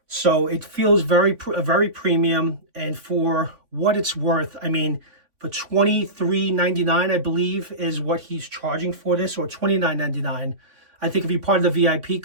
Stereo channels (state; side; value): late; left; 3.5 ms